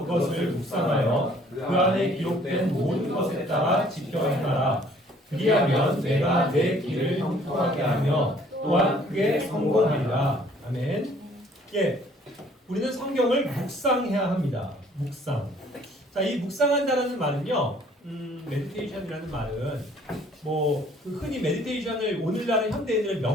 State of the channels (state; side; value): normal; both; correlation 0.58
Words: 그것을 묵상하여 그 안에 기록된 모든 것에 따라 지켜 행하라. 그리하면 내가 내 길을 형통하게 하며 또한 그게 성공하리라. 아멘. 예, 우리는 성경을 묵상해야 합니다. 묵상. 자, 이 묵상한다라는 말은요, 메디테이션이라는 말은 흔히 메디테이션을 오늘날의 현대인들은